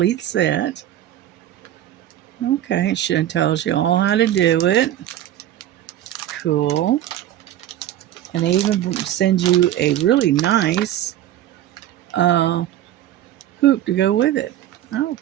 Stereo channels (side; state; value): left; quieter; 12.3 dB